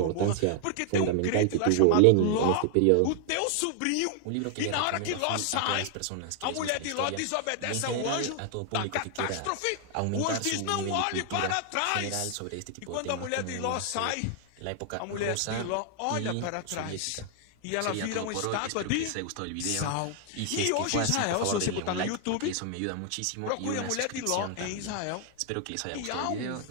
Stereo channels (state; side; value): different; both; correlation 0.00